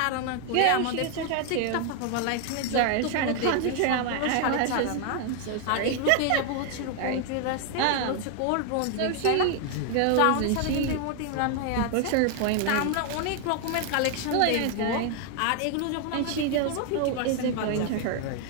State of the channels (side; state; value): both; different; correlation 0.00